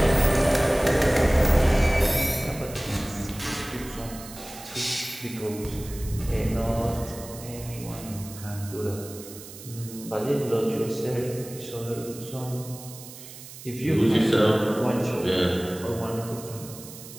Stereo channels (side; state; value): right; noise; hiss, 15 dB below the sound